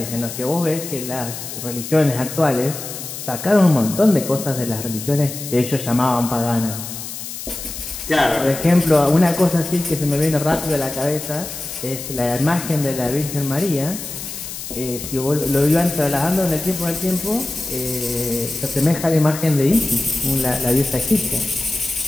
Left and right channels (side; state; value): left; noise; hiss, 9 dB below the sound